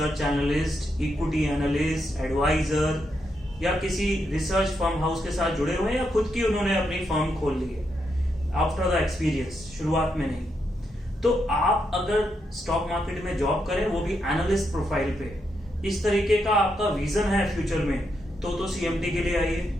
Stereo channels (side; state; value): both; normal; correlation 0.82